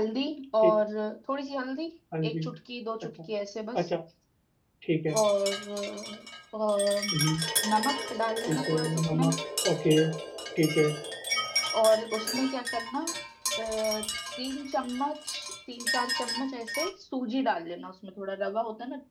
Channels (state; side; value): identical; both; correlation 1.00